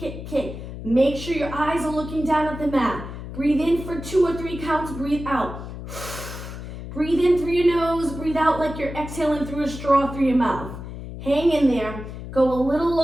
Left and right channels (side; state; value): left; noise; hum, 10 dB below the sound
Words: kick. Make sure your eyes are looking down at the mat. Breathe in for 2 or 3 counts. Breathe out. Breathe in through your nose. Breathe out like you're exhaling through a straw through your mouth. Hang in there. Go a little